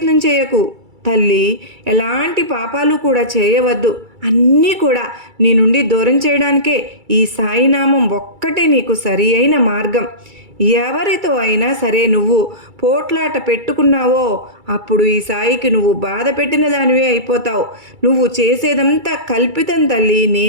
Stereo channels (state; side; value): late; left; 2.3 ms